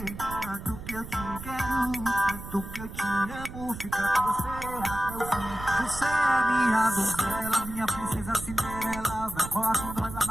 tanto que eu te quero, tanto que eu te amo. Fica com você até o fim. Você é minha donzela, minha princesa Cinderela. Vai colar com nós lá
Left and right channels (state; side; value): noise; right; rumble, 11 dB below the sound